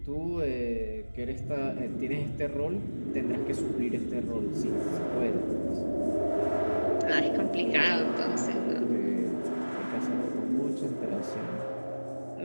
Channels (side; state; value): both; inverted; correlation -1.00